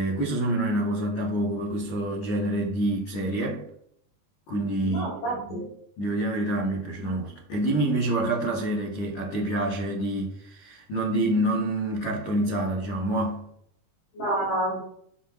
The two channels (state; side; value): late; right; 20 ms